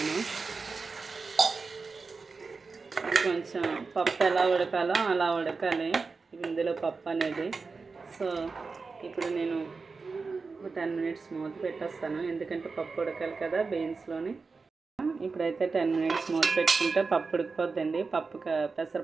కొంచెం పప్పు ఎలా ఉడకాలో అలా ఉడకాలి ఇందులో పప్పు అనేది. సో ఇప్పుడు నేను 10 మినిట్స్ మూత పెట్టేస్తాను, ఎందుకంటే పప్పు ఉడకాలి కదా బీన్స్లోని. ఇప్పుడైతే 10 మినిట్స్ మూత పెట్టుకుంటే పప్పు ఉడికిపోద్దండి.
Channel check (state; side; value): quieter; left; 4.4 dB